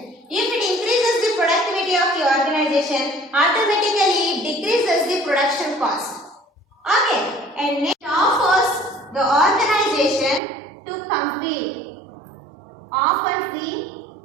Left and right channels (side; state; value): left; drops out; at 10.4 s